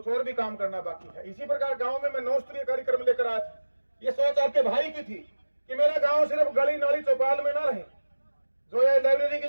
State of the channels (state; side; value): inverted; both; correlation -1.00